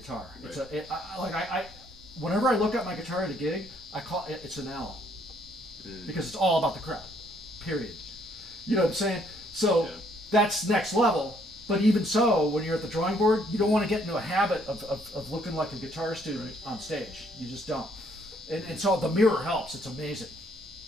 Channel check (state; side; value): normal; both; correlation 0.67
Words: Right. It's whenever I look at my guitar at a gig, I call it's an L, because it's all about the crowd. Period. You know what I'm saying? So that's next level. But even so, when you're at the drawing board, you don't want to get into a habit of looking like a guitar student on stage. You just don't. And so the mirror helps. It's amazing.